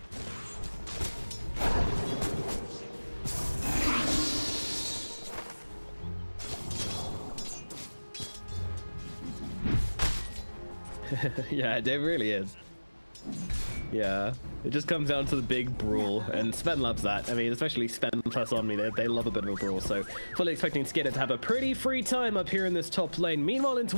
Yeah, it really is. Yeah, it just comes down to the big brawl, and Sven loves that. I mean, especially Sven plus Omni, they love a bit of a brawl, so fully expecting Skidder to have a pretty free time up here in this top lane. Meanwhile, in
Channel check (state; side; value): inverted; both; correlation -1.00